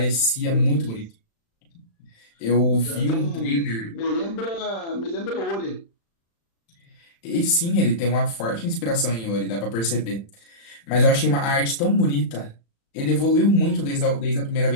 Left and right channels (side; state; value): right; late; 35 ms